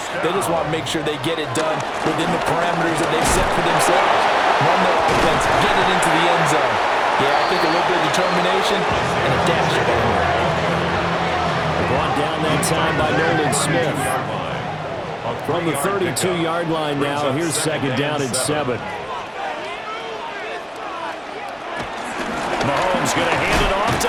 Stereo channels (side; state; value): both; identical; correlation 1.00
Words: They just want to make sure they get it done within the parameters that they've set for themselves. Run their offense, get it into the end zone. Yeah, I think a little bit of determination and a dash banger. Brought down that time by Nolan Smith. From the 32-yard line now, here's second down and 7. Mahomes going to hand it off to